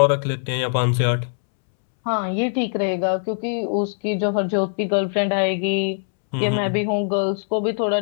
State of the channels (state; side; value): silent; right; 64 dB below the other